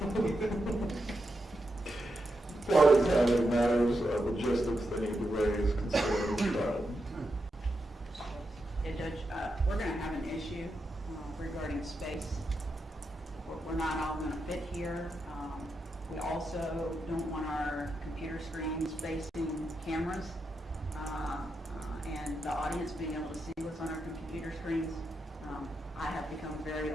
Parties having matters of logistics they need to raise considering the trial. Yeah, Judge, we're going to have an issue regarding space. We're not all going to fit here. We also don't want our computer screens facing cameras and the audience being able to see what's on our computer screens. I have become very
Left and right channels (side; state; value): both; normal; correlation 0.86